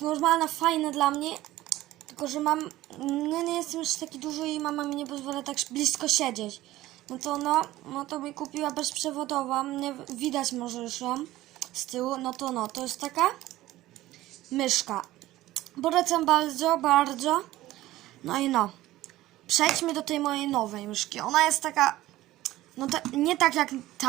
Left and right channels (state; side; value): quieter; left; 16.1 dB